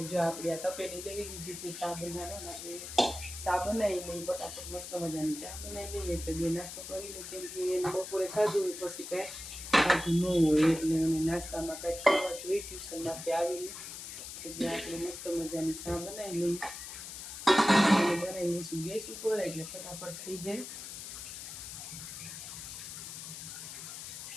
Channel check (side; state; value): left; noise; hiss, 9 dB below the sound